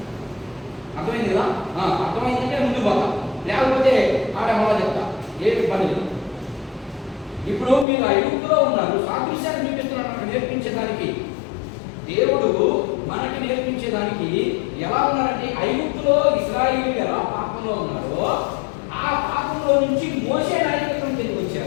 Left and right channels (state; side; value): drops out; right; at 7.9 s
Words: అర్థమైంది కదా? అర్థమైందంటే ముందు పోతా, లేకపోతే ఆడ మొదలు చెప్తా, ఏమి పని లేదు. ఇప్పుడు మీరు ఐగుప్తులో ఉన్నారు, సాదృశ్యాన్ని చూపిస్తున్నాడు మనకు నేర్పించడానికి. దేవుడు మనకి నేర్పించేదానికి ఎలా ఉన్నారంటే, ఐగుప్తులో ఇశ్రాయేలీయులు ఎలా పాపంలో ఉన్నారో ఆ పాపంలో నుంచి మోషే నాయకత్వం కిందకి